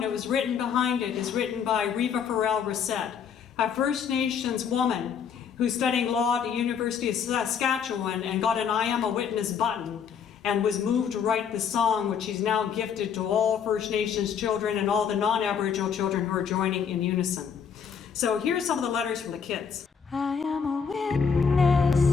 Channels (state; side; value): quieter; right; 7.0 dB